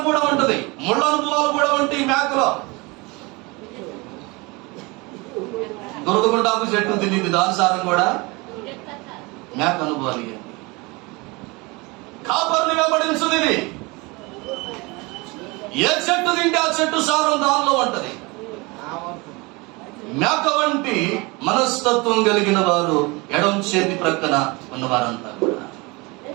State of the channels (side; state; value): left; quieter; 25.7 dB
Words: కూడా ఉంటది, ముళ్ళ అనుభవాలు కూడా ఉంటాయి మేకలో. దురదగుంట ఆకు చెట్టు తినిద్ది, దాని సారం కూడా మేక అనుభవాలు. కాపర్ని వెంబడించదు ఇది. ఏ చెట్టు తింటే ఆ చెట్టు సారం దానిలో ఉంటది. మేక వంటి మనస్తత్వం కలిగిన వారు ఎడం చేతి ప్రక్కన ఉన్నవారంతా కూడా